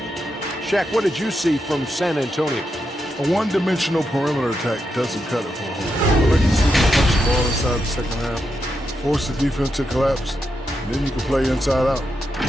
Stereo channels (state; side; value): normal; both; correlation 0.85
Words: Shaq, what did you see from San Antonio? A one-dimensional perimeter attack doesn't cut it for a whole. I like to see them punch the ball inside the second half, force the defense to collapse, and then you can play inside out.